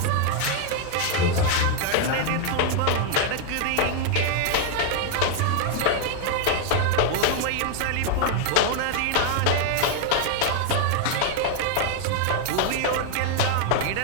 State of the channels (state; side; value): different; both; correlation 0.00